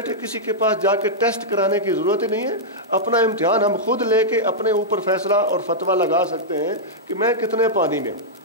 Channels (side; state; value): both; normal; correlation -0.08